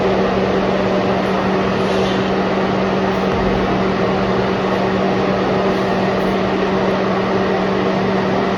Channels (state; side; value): identical; both; correlation 1.00